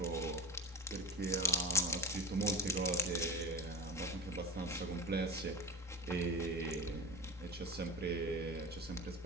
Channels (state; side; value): normal; both; correlation 0.33